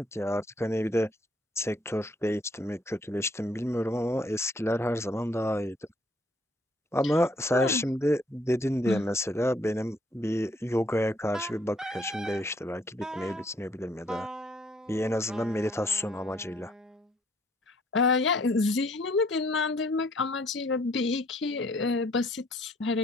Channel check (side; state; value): both; normal; correlation 0.65